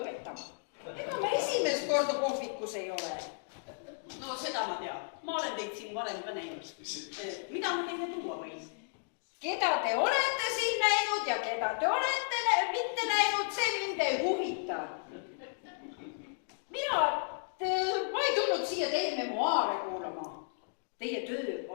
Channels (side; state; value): right; silent; digital silence